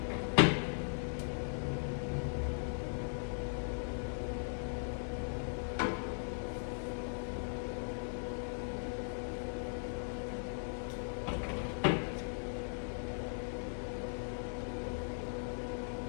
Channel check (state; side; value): silent; right; digital silence